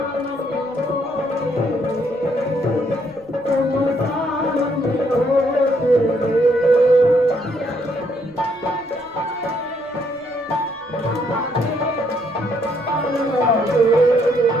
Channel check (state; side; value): noise; right; rumble, 29 dB below the sound